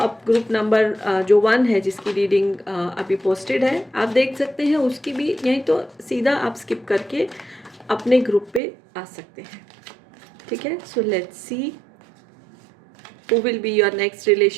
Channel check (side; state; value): left; drops out; at 8.6 s